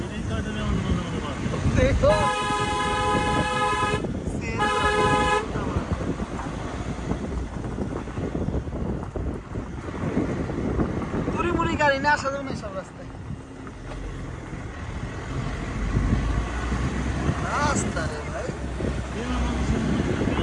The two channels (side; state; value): both; identical; correlation 1.00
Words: দেখো মুড়ি গাড়ি না আসা যাবে না সব রাস্তায় রাস্তা রে ভাই